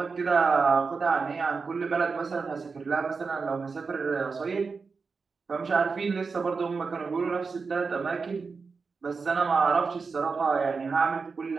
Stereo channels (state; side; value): quieter; left; 4.8 dB